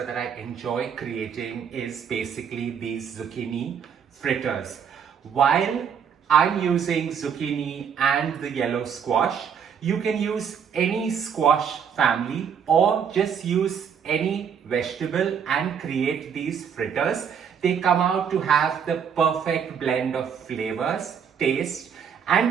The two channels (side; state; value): left; quieter; 7.4 dB